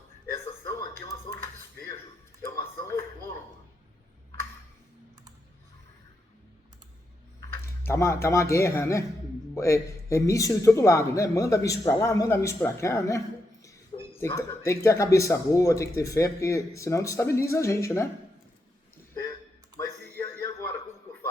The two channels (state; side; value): normal; both; correlation 0.83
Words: Essa ação aqui é uma ação de despejo, é uma ação autônoma. Tá uma guerra, né? É míssil de todo lado, né? Manda míssil pra lá, manda míssil pra cá, né? Tem que ter a cabeça boa, tem que ter fé, porque senão destabiliza a gente, né? Mas e agora? Como que eu